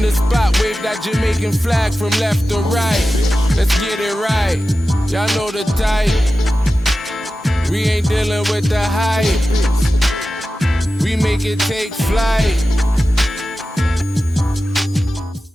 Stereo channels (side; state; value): both; normal; correlation 0.93